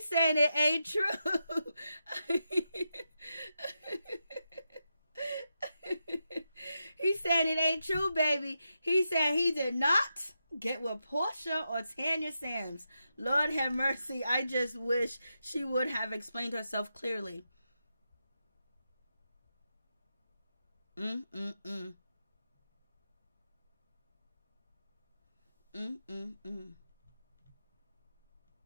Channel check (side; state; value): both; inverted; correlation -0.87